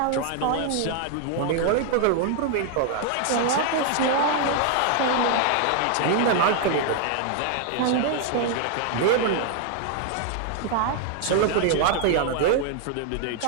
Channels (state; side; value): different; both; correlation 0.00